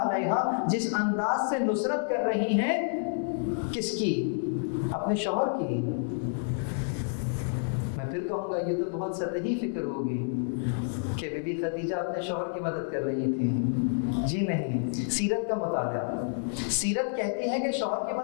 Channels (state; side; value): silent; right; 58 dB below the other